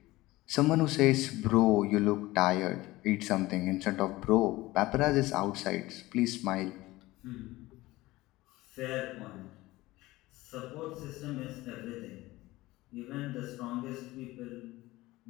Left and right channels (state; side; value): quieter; right; 18.9 dB